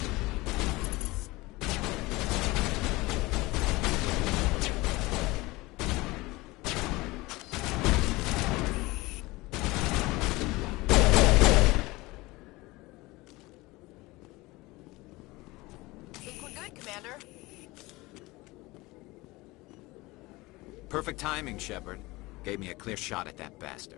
Perfect timing, Shepard. Gave me a clear shot at that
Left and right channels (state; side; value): quieter; right; 21.5 dB